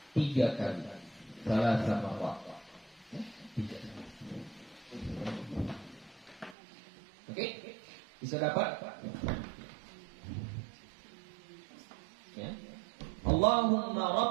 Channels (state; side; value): drops out; left; at 6.6 s